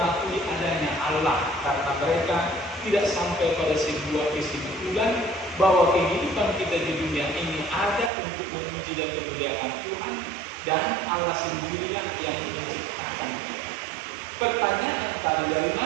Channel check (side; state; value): left; drops out; at 8.1 s